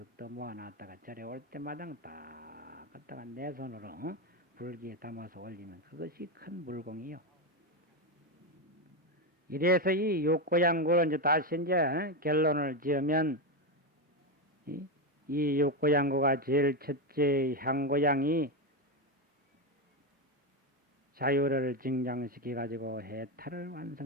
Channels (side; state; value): both; normal; correlation 0.10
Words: 더 모아놨다가 절에 올 때마다 딱 갖다가 내 손으로 불기에 담아서 올리면 그것이 큰 물공이요. 이래서 이 육고양구를 이제 다시 이제 결론을 지으면 이 육고양구가 제일 첫째 향고양이 자유를 증장시켜 가지고 해탈을